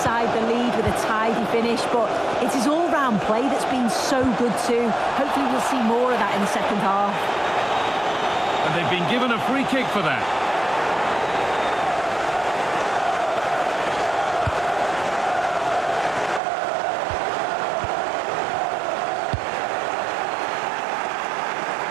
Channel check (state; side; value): drops out; left; at 16.4 s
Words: the lead with a tidy finish, but it's his all-round play that's been so good too. Hopefully we'll see more of that in the second half. And they've been given a free kick for that.